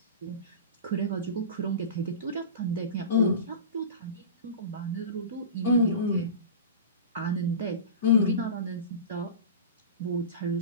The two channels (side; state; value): both; inverted; correlation -0.30